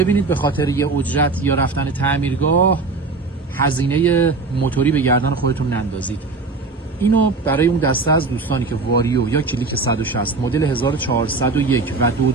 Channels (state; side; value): quieter; left; 3.9 dB